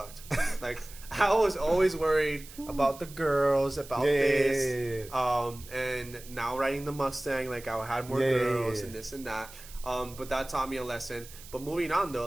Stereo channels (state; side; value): noise; right; hiss, 18 dB below the sound